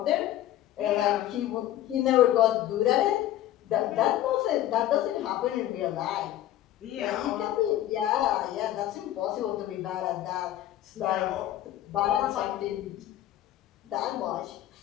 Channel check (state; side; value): quieter; right; 13.2 dB